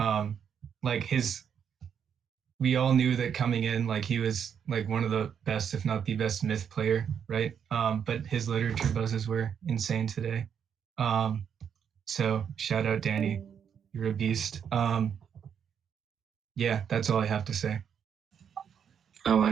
Like we all knew that coming in, like he was like one of the best, if not the best myth player, right? But his literature buzzes were insane today. So shout out Danny, you're a beast. Yeah, that's all I have to say. I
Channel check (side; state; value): left; quieter; 7.8 dB